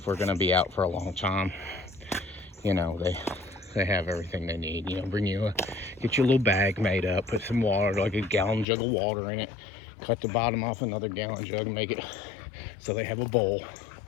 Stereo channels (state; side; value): drops out; right; at 8.7 s